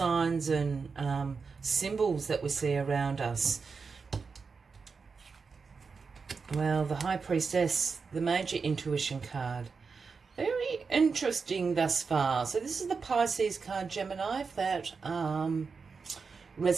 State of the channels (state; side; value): quieter; left; 5.0 dB